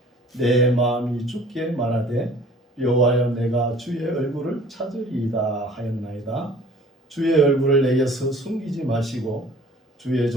내 마음이 죽게 말하되 여호와여 내가 주의 얼굴을 찾으리이다 하였나이다. 주의 얼굴을 내게서 숨기지 마시고 주의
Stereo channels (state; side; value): normal; both; correlation 0.51